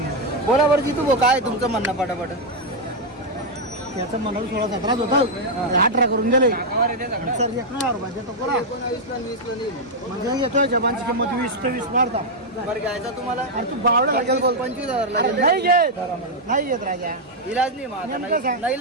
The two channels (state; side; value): normal; both; correlation -0.01